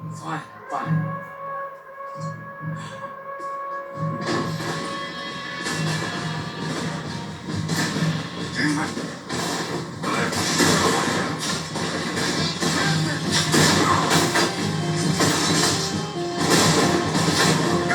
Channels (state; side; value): identical; both; correlation 1.00